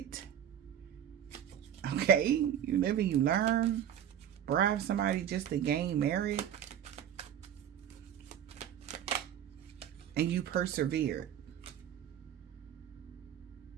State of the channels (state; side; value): quieter; left; 9.8 dB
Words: Okay, you live and you learn. Bribe somebody just to gain merit. And you persevere.